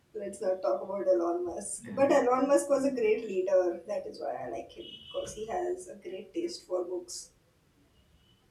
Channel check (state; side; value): identical; both; correlation 1.00